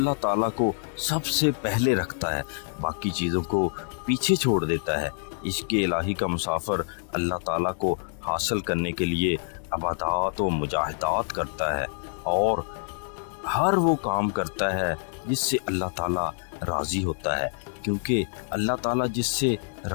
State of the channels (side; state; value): right; silent; 55 dB below the other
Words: تعالیٰ کو سب سے پہلے رکھتا ہے، باقی چیزوں کو پیچھے چھوڑ دیتا ہے۔ عشق الہی کا مسافر اللہ تعالیٰ کو حاصل کرنے کے لیے عبادات و مجاہدات کرتا ہے اور ہر وہ کام کرتا ہے جس سے اللہ تعالیٰ راضی ہوتا ہے، کیونکہ اللہ تعالیٰ جس سے